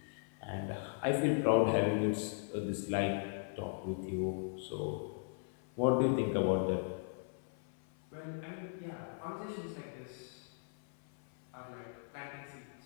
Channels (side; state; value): right; silent; 52 dB below the other